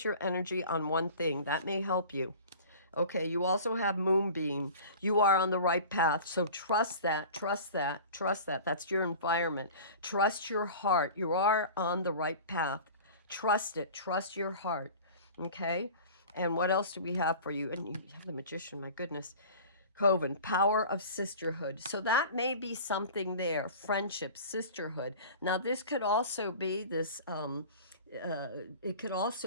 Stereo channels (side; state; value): both; inverted; correlation -0.39